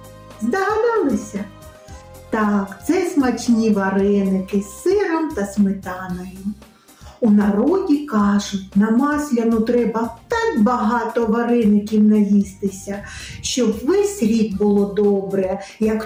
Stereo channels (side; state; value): both; identical; correlation 1.00